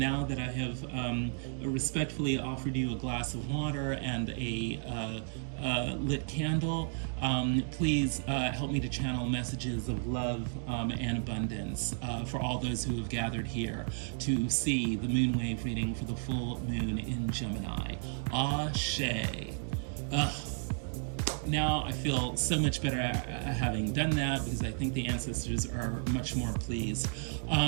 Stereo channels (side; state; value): left; silent; 56 dB below the other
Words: that I have respectfully offered you a glass of water and a lit candle. Please help me to channel messages of love and abundance for all those who have gathered here to see the moonwave reading for the full moon in Gemini. Ashe. Now I feel so much better having done that, because I think the ancestors are much more pleased.